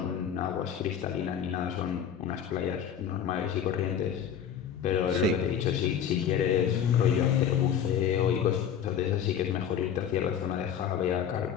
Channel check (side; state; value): right; quieter; 8.5 dB